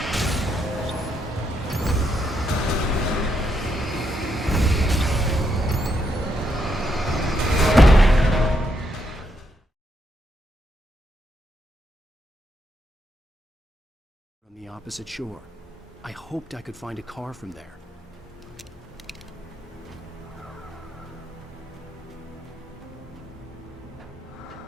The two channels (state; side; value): normal; both; correlation 0.78